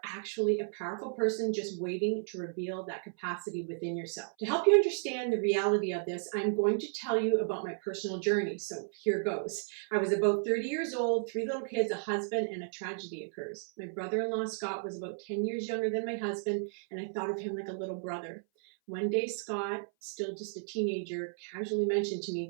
actually a powerful person just waiting to reveal that capacity within yourself. To help you understand the reality of this, I'm going to tell you about my personal journey. So here goes. I was about 30 years old, 3 little kids, a husband, and a tragedy occurs. My brother-in-law, Scott, was about 10 years younger than my husband, and I thought of him like a little brother. One day, Scott, still just a teenager, casually mentioned to me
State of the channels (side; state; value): left; silent; 55 dB below the other